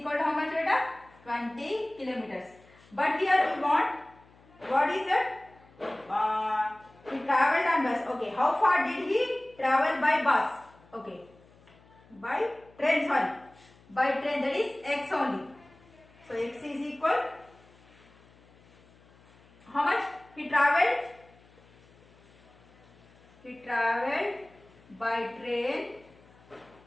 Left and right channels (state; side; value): noise; left; hum, 27 dB below the sound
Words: to how much, beta? 20 kilometers. But here we want, what is it? He traveled on bus. Okay. How far did he travel by bus? Okay. By train, sorry. By train, that is x only. So x is equal, how much he traveled? He traveled by train,